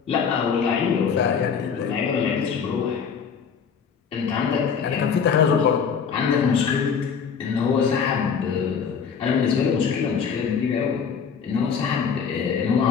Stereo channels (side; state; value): right; quieter; 6.6 dB